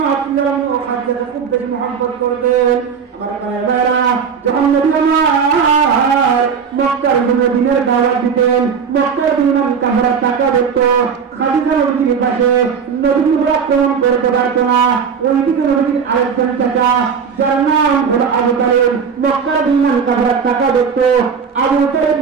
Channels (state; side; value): quieter; left; 6.5 dB